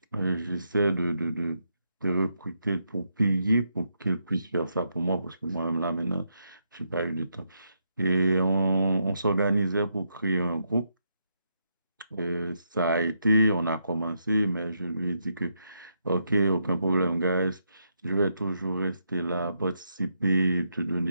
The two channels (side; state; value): both; inverted; correlation -0.80